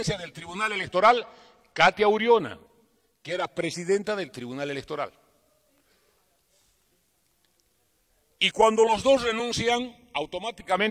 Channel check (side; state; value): both; identical; correlation 1.00